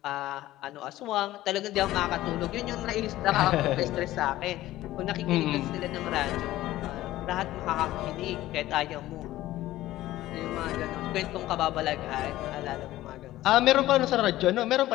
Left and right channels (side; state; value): right; quieter; 15.5 dB